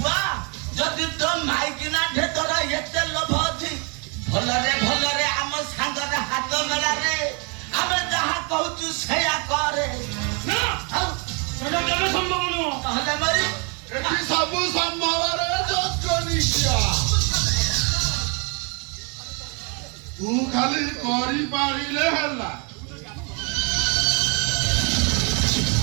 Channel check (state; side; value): quieter; left; 34.3 dB